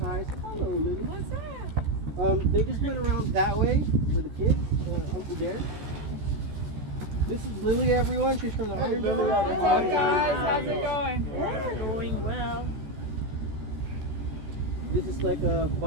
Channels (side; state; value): left; late; 14 ms